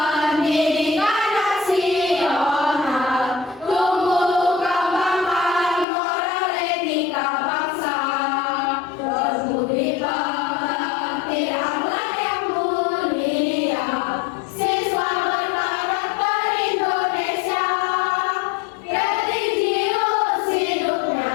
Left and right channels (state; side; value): drops out; right; at 5.9 s